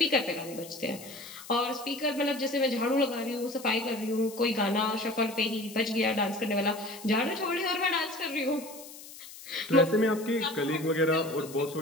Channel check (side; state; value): left; noise; hiss, 16 dB below the sound